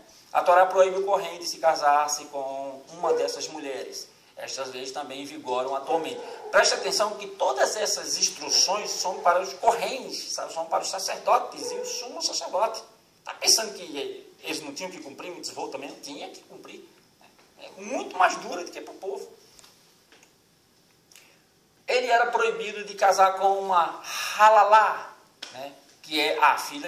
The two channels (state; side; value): identical; both; correlation 1.00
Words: A Torá proíbe o Kohen de se casar-se com uma dessas mulheres. Estas leis também vigoram atualmente. Preste atenção que todas essas instruções são para os Kohens, são para os sacerdotes e o sumo sacerdote. Está pensando que eles não tinham que cumprir mitzvot também? Não tinha que cumprir. É muito mais dura do que para o povo. ele era proibido de casar com uma halalá, né, que é a